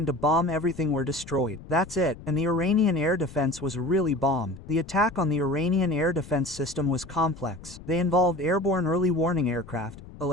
to bomb everything were destroyed. That's it, and the Iranian air defense was really bombed. The attack on the Iranian air defense system was complex. They involved airborne early warning aircraft,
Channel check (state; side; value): noise; left; rumble, 16 dB below the sound